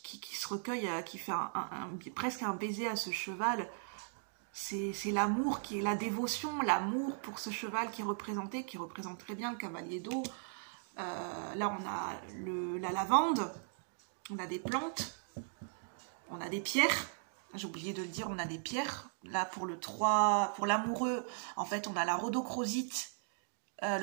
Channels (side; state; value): left; silent; digital silence